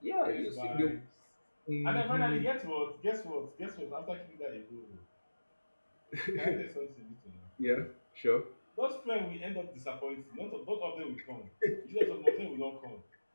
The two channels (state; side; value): inverted; both; correlation -1.00